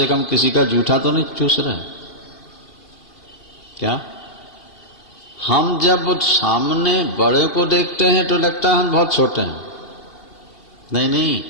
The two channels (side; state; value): right; late; 2.7 ms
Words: कम किसी का जूठा तो नहीं चूस रहे। क्या हम जब सामने बड़े को देखते हैं तो लगता है हम बहुत छोटे हैं। नहीं नहीं,